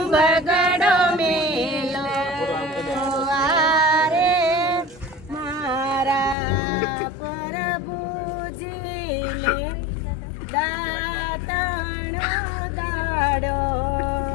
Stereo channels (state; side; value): drops out; right; at 6.4 s